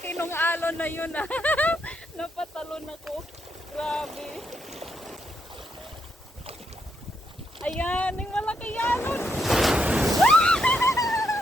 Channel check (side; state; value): both; normal; correlation 0.79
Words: ng alon na yun, ah. Napatalon ako. Grabe. Ayan, yung malaki alon.